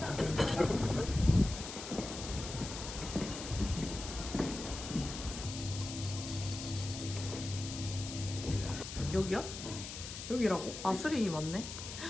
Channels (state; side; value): noise; left; hiss, 9 dB below the sound